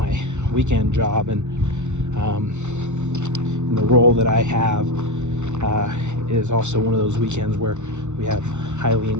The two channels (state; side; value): late; left; 0.83 ms